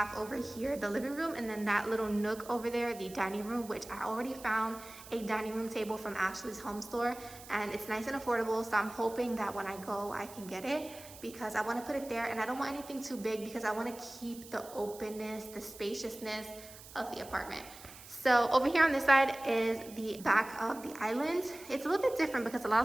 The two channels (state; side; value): noise; right; hiss, 17 dB below the sound